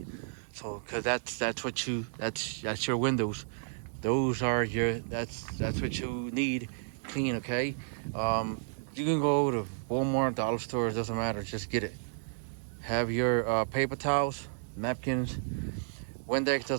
So, cause that's your windows. Those are that's what you need clean. Okay. You can go to Walmart, dollar stores, doesn't matter. Just get it. Have your paper towels, napkins, Windex,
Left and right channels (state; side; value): silent; left; digital silence